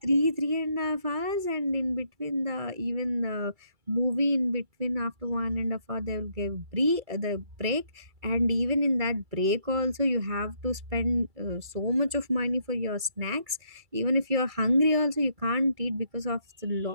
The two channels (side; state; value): left; late; 2.3 ms